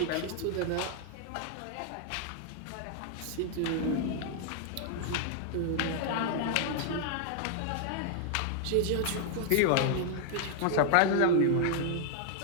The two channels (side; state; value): both; different; correlation 0.00